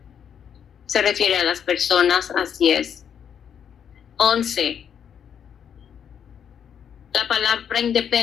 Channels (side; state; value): right; quieter; 8.2 dB